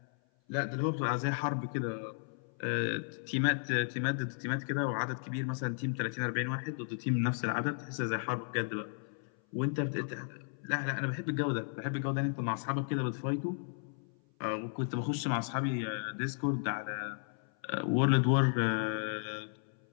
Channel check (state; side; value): silent; right; 55 dB below the other